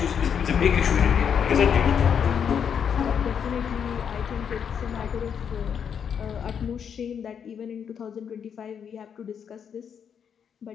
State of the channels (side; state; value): right; quieter; 7.6 dB